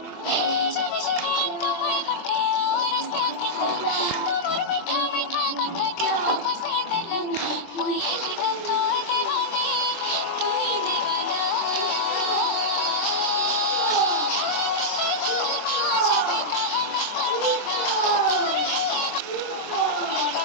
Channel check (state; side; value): late; right; 24 ms